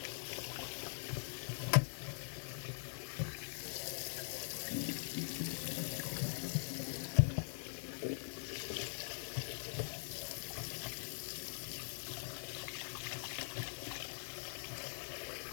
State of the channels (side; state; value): right; silent; digital silence